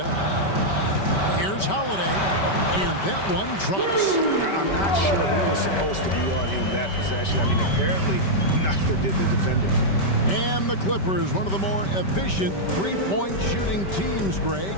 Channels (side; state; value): right; late; 5.2 ms